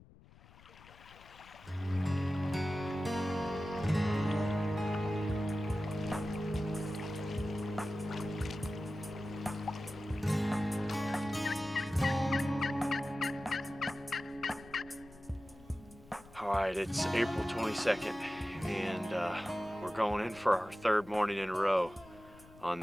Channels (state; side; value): noise; left; rumble, 22 dB below the sound